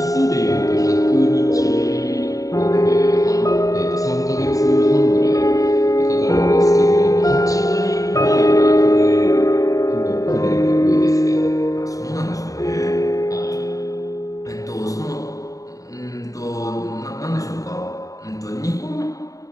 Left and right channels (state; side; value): late; right; 0.16 ms